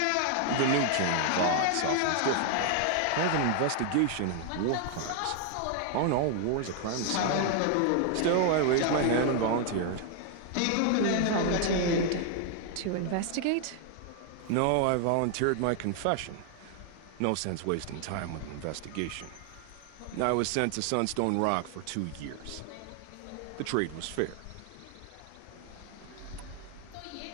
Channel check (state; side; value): different; both; correlation 0.00